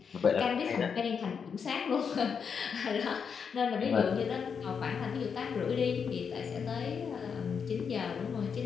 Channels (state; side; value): quieter; right; 6.5 dB